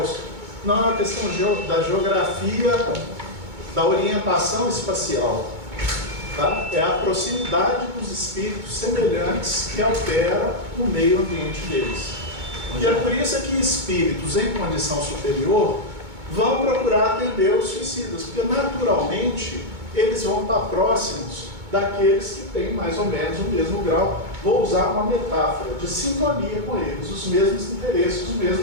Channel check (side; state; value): left; late; 2.2 ms